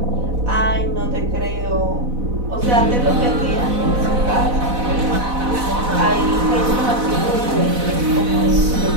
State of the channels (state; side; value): late; left; 4.0 ms